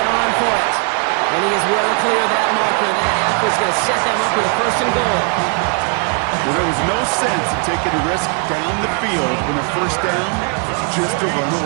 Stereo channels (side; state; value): left; quieter; 39.0 dB